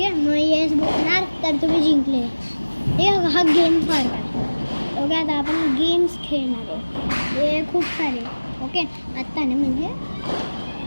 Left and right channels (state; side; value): inverted; both; correlation -1.00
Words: आहे. मग येस बोलणार तर तुम्ही जिंकले. ठीक आहे. हा गेम फार काय. ओके आता आपण गेम्स खेळणार आहे. हे खूप सारे. ओके आत्ता ना म्हणजे